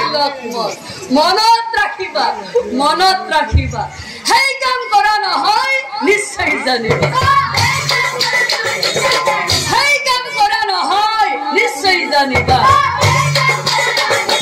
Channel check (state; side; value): identical; both; correlation 1.00